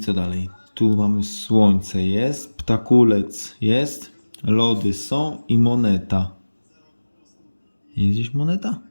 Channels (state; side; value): inverted; both; correlation -1.00